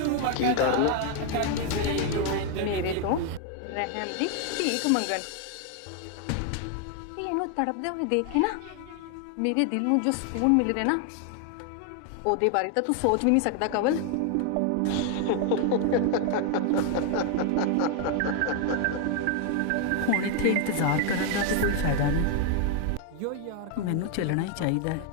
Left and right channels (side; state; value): both; different; correlation 0.01